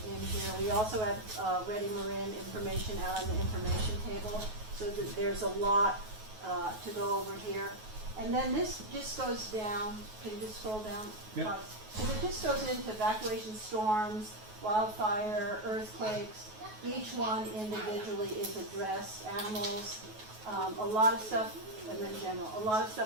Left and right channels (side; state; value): left; late; 9.3 ms